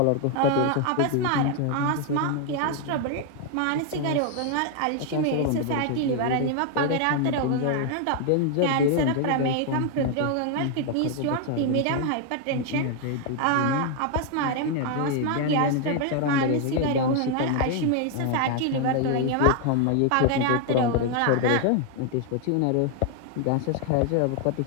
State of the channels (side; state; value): both; different; correlation 0.00